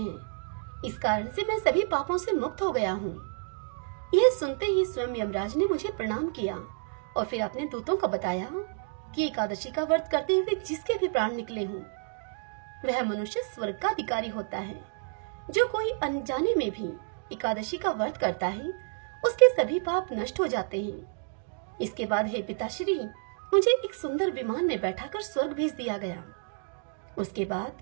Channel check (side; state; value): left; silent; 58 dB below the other